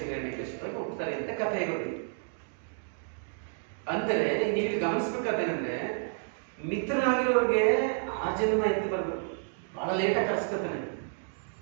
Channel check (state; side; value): silent; left; 57 dB below the other